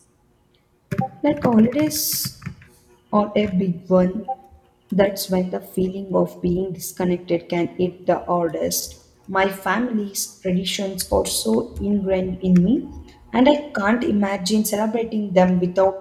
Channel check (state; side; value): identical; both; correlation 1.00